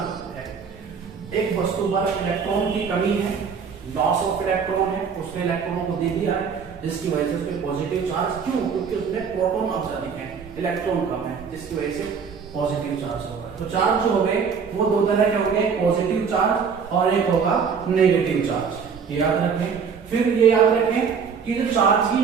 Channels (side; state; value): left; quieter; 6.2 dB